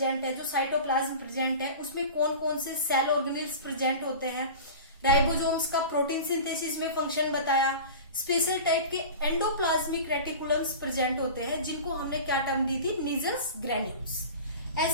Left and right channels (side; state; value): both; inverted; correlation -0.34